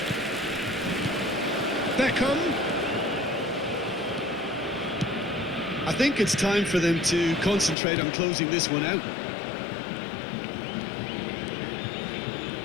Beckham. I think it's time for them to concentrate on closing this one out.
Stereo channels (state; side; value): drops out; right; at 7.8 s